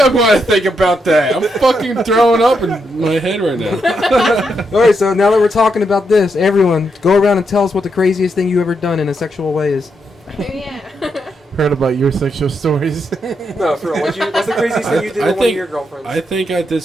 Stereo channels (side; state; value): both; normal; correlation 0.81